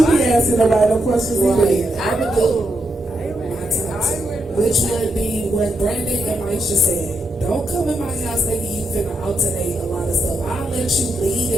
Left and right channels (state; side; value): normal; both; correlation 0.82